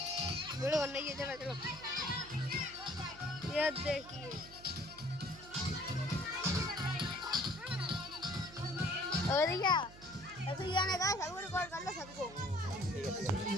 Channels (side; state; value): right; noise; hum, 18 dB below the sound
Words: वीडियो बनना ही है। चलो चलो ये देखिए और क्या ऐसे गाने का सबको रिकॉर्ड कर लो सबको।